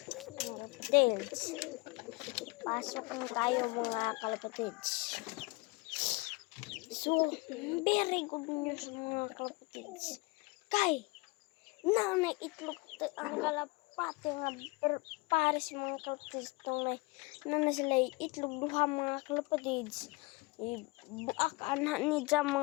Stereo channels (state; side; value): quieter; right; 25.6 dB